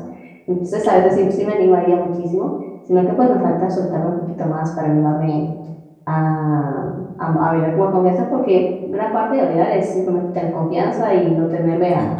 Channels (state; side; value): identical; both; correlation 1.00